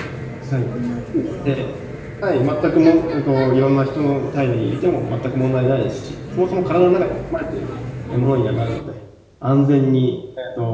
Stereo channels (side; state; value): both; identical; correlation 1.00